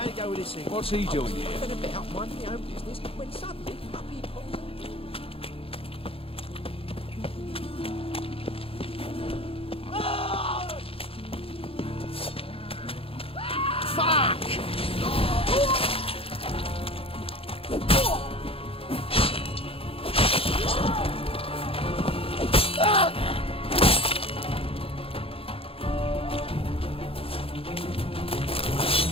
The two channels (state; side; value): late; right; 0.27 ms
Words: it go with this thing? What's he doing here? Been a bit up minding my own business when suddenly puppy pulls out. Fuck!